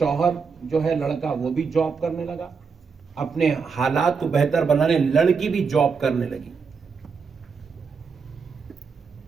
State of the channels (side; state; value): left; quieter; 5.5 dB